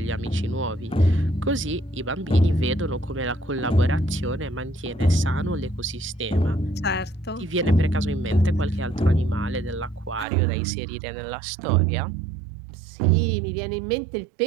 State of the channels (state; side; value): drops out; left; at 10.2 s